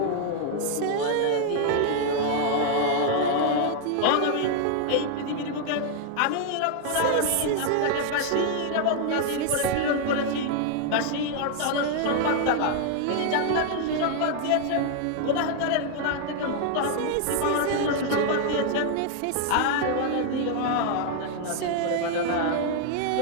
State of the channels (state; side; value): different; both; correlation 0.00